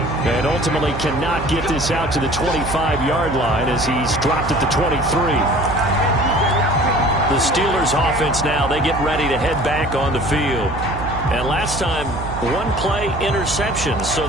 And ultimately cannot get this out to the 25-yard line as he's dropped at the 23. The Steelers offense now, they get ready to head back on the field. And last time, one-play interception. So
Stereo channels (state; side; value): noise; right; hum, 9 dB below the sound